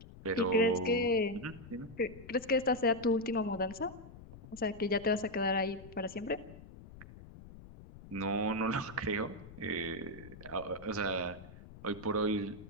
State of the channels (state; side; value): noise; left; rumble, 17 dB below the sound